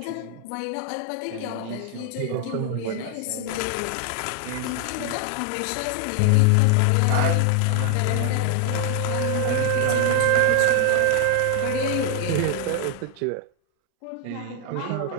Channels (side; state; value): both; different; correlation 0.00